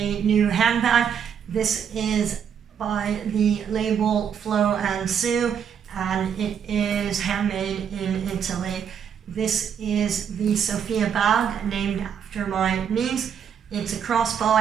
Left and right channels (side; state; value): left; quieter; 7.9 dB